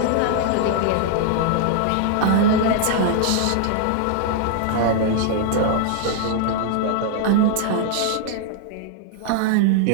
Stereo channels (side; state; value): both; different; correlation -0.01